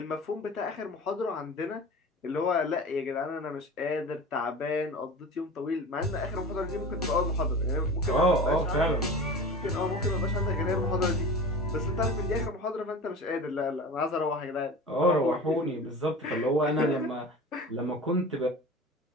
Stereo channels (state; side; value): normal; both; correlation 0.35